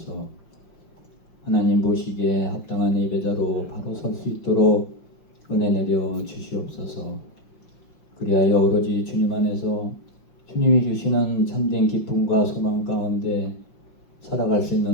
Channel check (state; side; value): late; right; 5.6 ms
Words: 하나님 보시기에 합당한 예배자로 바로 설 수 있도록 은혜 내려 주시옵소서. 그리하여 오로지 주님 안에서 주님이 주시는 참된 기쁨과 소망 가운데 살아갈 수